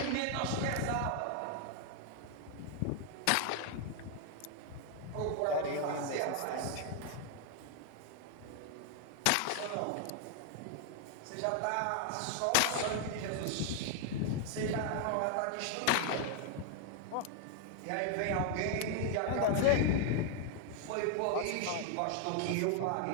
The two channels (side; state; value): both; different; correlation 0.00